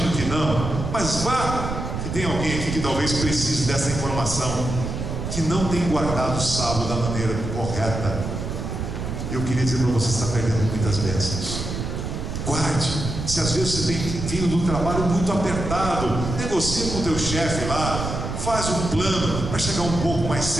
que não, mas vá que tem alguém aqui que talvez precise dessa informação, que não tem guardado o sábado da maneira correta. Eu queria dizer para você, está perdendo muitas bênçãos. Guarde. Se às vezes você tem vindo do trabalho muito apertado, negocia com o teu chefe lá, faz um plano para chegar um pouco mais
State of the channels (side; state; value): right; noise; rumble, 4 dB below the sound